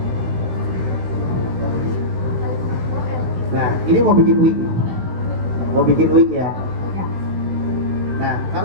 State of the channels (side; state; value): left; late; 16 ms